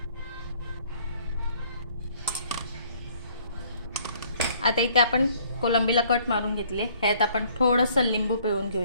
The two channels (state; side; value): inverted; both; correlation -0.61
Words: आता इथे आपण कोलंबीला कट मारून घेतले. ह्यात आपण थोडंसं लिंबू पिळून